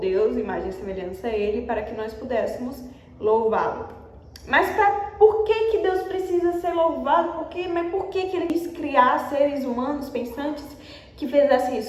imagem e semelhança a Ele, para que nós pudéssemos louvá-lo. Mas por que Deus precisa ser louvado? Mas por que Ele quis criar seres humanos pensantes que fizessem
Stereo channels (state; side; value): identical; both; correlation 1.00